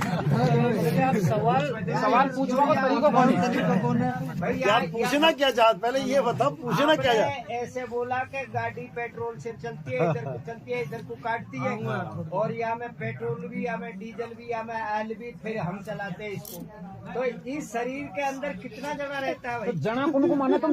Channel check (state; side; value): identical; both; correlation 1.00